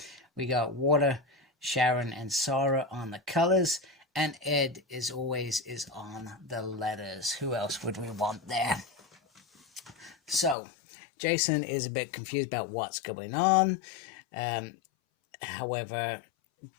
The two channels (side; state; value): right; drops out; at 10.6 s